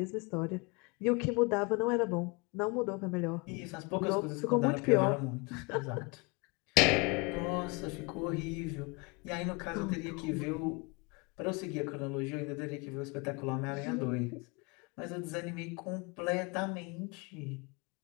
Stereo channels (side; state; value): right; quieter; 28.7 dB